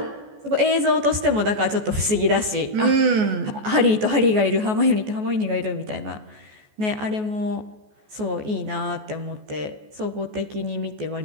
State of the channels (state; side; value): late; left; 14 ms